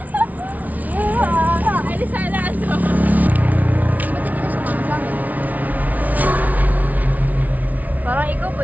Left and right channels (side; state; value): left; late; 0.074 ms